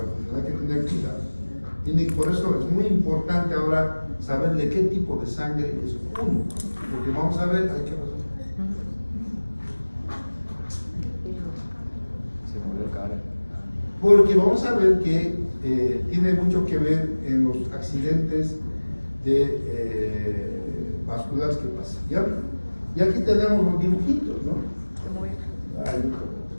hay que tener cuidado. Por eso es muy importante ahora saber de qué tipo de sangre es uno. Porque vamos a ver, hay que pasar. Porque vamos a ver que tiene mucho que ver en los accidentes vasculares que pasan. ¿Ya? Y aquí tenemos los dibujitos, ¿no? Ay,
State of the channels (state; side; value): inverted; both; correlation -1.00